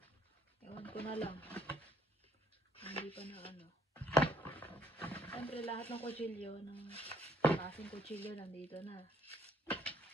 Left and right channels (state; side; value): normal; both; correlation 0.65